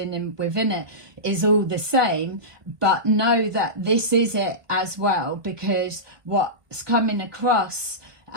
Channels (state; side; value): late; left; 1.5 ms